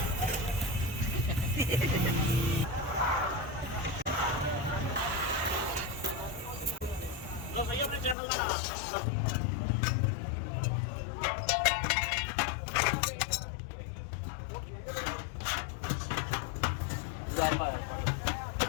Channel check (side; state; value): right; drops out; at 8.2 s